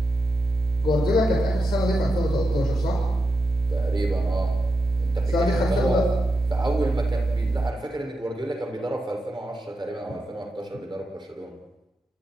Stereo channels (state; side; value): normal; both; correlation 0.87